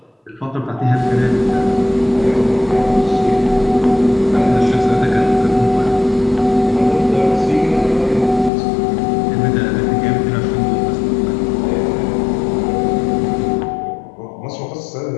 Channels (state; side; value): drops out; right; at 8.5 s